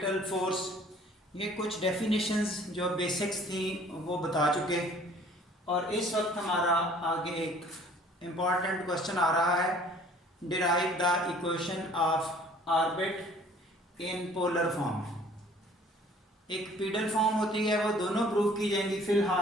फोर्स, ये कुछ डेफिनेशंस जो बेसिक्स थी वो बता चुके, और इस वक्त हमारा आगे एक इम्पॉर्टेंट क्वेश्चन आ रहा है, derive the equation of orbit in polar form. एक पीडल फॉर्म होती है, वो दोनों प्रूव की जाएंगी।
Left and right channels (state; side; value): normal; both; correlation 0.54